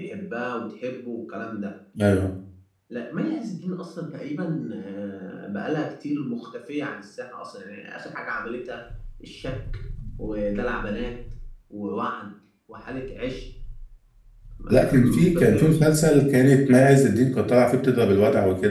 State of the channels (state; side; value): identical; both; correlation 1.00